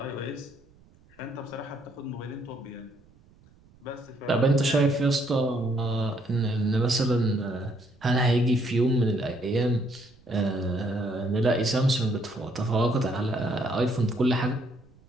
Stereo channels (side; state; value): right; noise; rumble, 29 dB below the sound